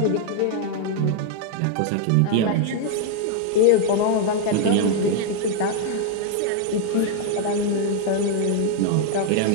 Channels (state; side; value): different; both; correlation 0.00